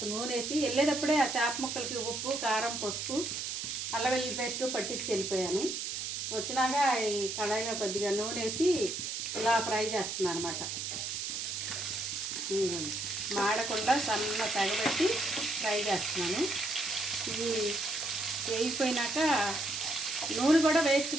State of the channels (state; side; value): noise; right; hiss, 4 dB below the sound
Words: నూనె వేసి వెళ్ళేటప్పుడే ఆ చేప ముక్కలకి ఉప్పు, కారం, పసుపు, అల్లం వెల్లుల్లి పేస్ట్ పట్టించి వెళ్ళిపోయాను. వచ్చినాక ఈ కళాయిలో కొద్దిగా నూనె వేసి ఇలా ఫ్రై చేస్తున్నాను అనమాట. మాడకుండా సన్న తగబెట్టి ఫ్రై చేస్తున్నాను. ఇది వేగిపోయినాక నూనె కూడా వేస్ట్